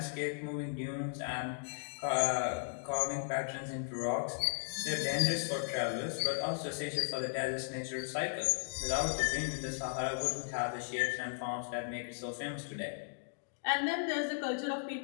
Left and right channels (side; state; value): right; silent; digital silence